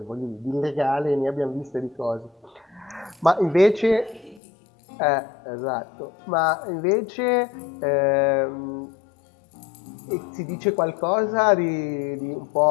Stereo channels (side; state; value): right; drops out; at 4.4 s